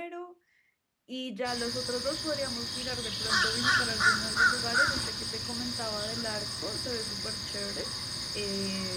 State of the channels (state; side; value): identical; both; correlation 1.00